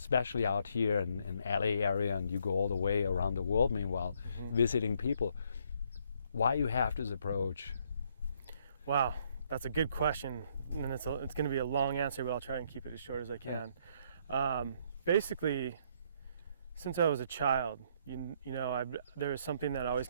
out here in LA area, and you go all the way around the world meanwhile, visiting people, why you have this approach? Wow, that's a good question. And it's going to be a long answer, but I'll try and keep it as short as I can. Basically, since I was a child, there was something that always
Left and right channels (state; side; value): inverted; both; correlation -0.69